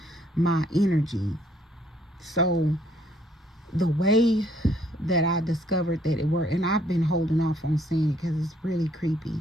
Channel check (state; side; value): normal; both; correlation 0.66